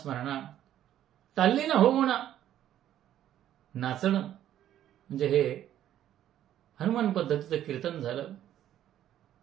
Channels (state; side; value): quieter; left; 11.7 dB